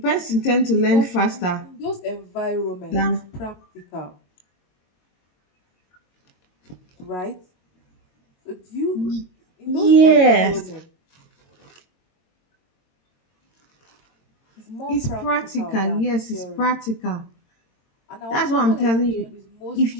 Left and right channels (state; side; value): late; right; 22 ms